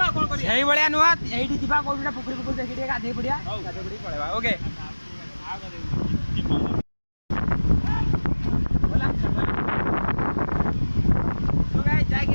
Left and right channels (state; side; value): inverted; both; correlation -1.00